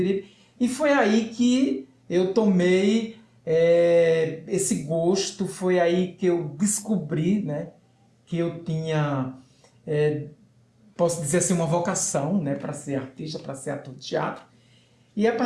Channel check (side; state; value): both; identical; correlation 1.00